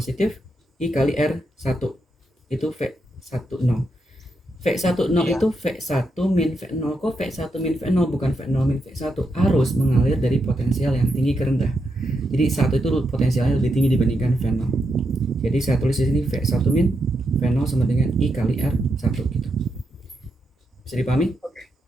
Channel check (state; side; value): normal; both; correlation 0.83